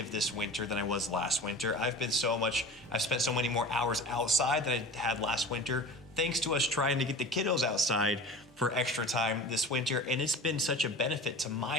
this winter than I was last winter. I've spent so many more hours outside than I had last winter, thanks to us trying to get the kiddos outside for extra time this winter. And it's been such a benefit to my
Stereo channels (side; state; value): both; normal; correlation 0.36